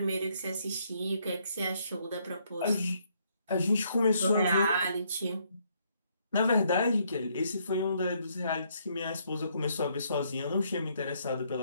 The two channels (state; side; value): inverted; both; correlation -0.71